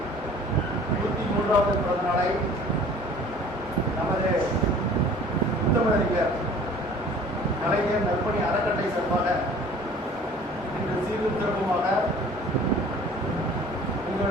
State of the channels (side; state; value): both; normal; correlation 0.48